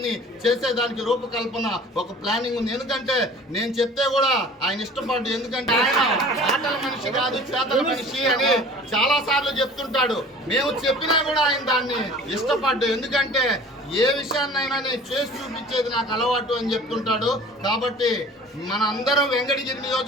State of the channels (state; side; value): normal; both; correlation 0.45